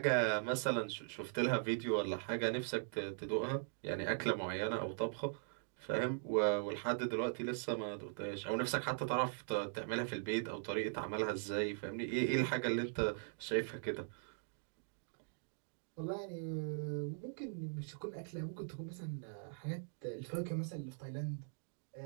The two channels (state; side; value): silent; left; digital silence